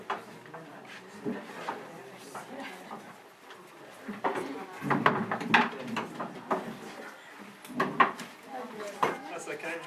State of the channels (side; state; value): both; identical; correlation 1.00